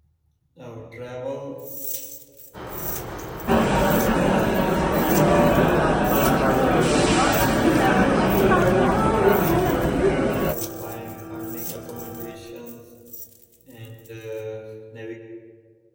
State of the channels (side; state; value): both; identical; correlation 1.00